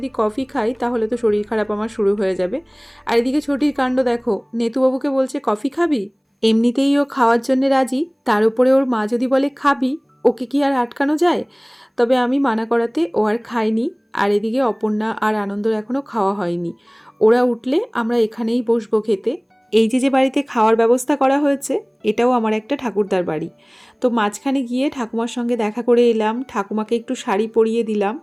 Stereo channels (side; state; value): both; identical; correlation 1.00